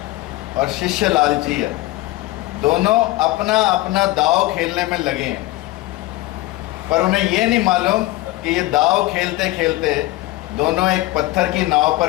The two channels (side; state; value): right; quieter; 18.2 dB